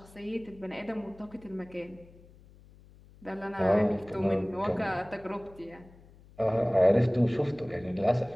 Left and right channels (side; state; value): left; noise; hum, 24 dB below the sound